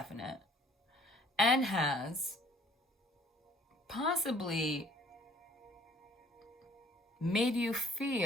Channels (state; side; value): normal; both; correlation 0.57